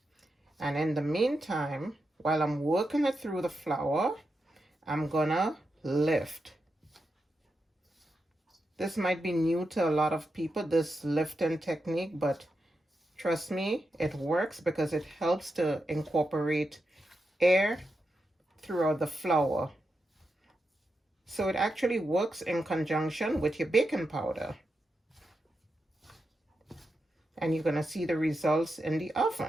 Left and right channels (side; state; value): both; normal; correlation 0.87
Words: And in the meantime, while I'm working it through the flour, I'm gonna lift. This might be new to a lot of people, this lifting technique, but trust me, it works because it helps to incorporate air throughout the flour. So it actually works in conjunction with your baking powder. And you're going to see the results in the